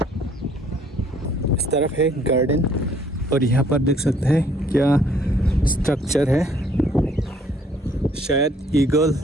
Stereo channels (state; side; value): normal; both; correlation 0.61